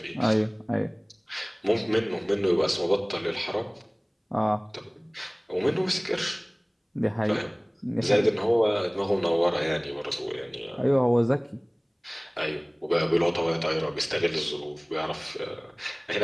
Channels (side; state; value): both; identical; correlation 1.00